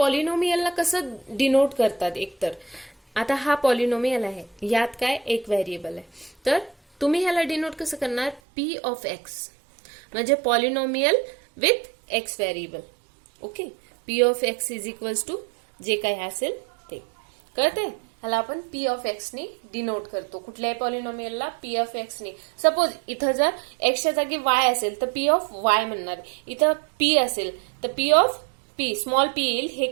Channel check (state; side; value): drops out; left; at 8.4 s